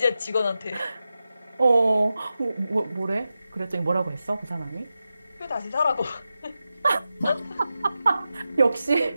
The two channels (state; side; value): inverted; both; correlation -0.92